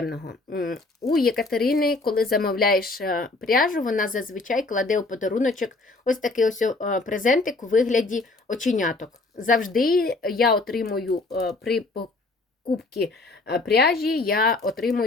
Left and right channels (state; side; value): quieter; right; 3.3 dB